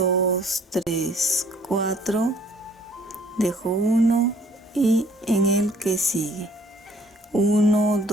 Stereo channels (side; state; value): both; normal; correlation 0.59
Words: 3, 4. Dejo 1 y en el que sigue. 1,